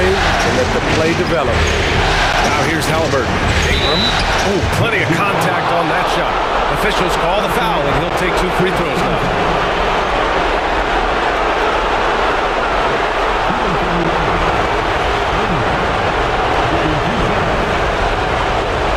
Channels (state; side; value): identical; both; correlation 1.00